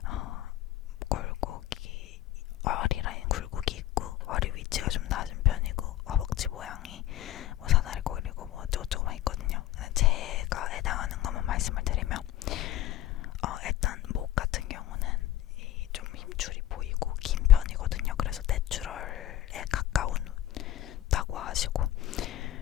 굴곡이 허리 라인 굴곡이 있고 허리 위치가 좀 낮은 편이고 허벅지 모양이 뭐 사다리 꼬리고 뭐 어쩌고저쩌고 있거든요. 제가 해당하는 것만 말씀을 드리면 일단 목 같은 경우는 좀 힘줄이 보이고 긴 편이거든요. 그래서 내추럴에 가까운다고 하시고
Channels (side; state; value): right; quieter; 13.5 dB